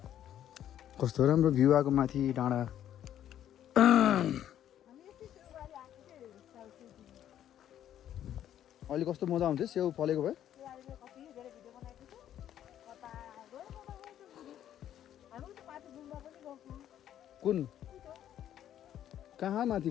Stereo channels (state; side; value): quieter; right; 11.0 dB